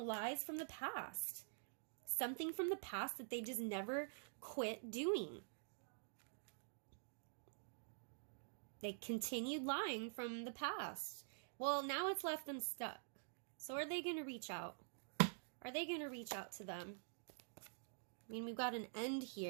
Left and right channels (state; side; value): silent; left; digital silence